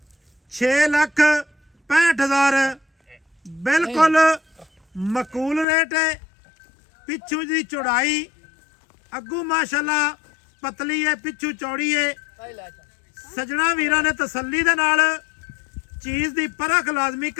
6,65,000 ਬਿਲਕੁਲ ਮਕੂਲ ਰੇਟ ਹੈ। ਪਿੱਛੂ ਦੀ ਚੌੜਾਈ ਅੱਗੂ ਮਾਸ਼ਾਅੱਲਾ ਪਤਲੀ ਹੈ ਪਿੱਛੂ ਚੌੜੀ ਹੈ। ਆਈ ਲੈ ਚੱਲ ਸਜਣਾ ਵੀਰਾਂ ਨੇ ਤਸੱਲੀ ਦੇ ਨਾਲ ਚੀਜ਼ ਦੀ ਪਰਖ ਲਾਜ਼ਮੀ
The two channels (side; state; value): right; drops out; at 5.7 s